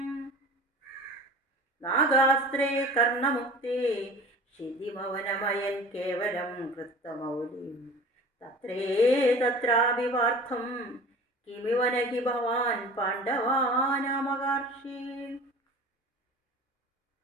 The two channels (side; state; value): both; normal; correlation 0.41